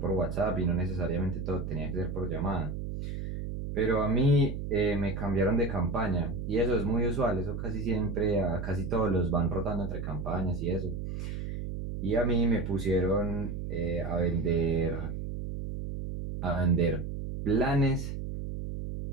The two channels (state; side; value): noise; right; hum, 5 dB below the sound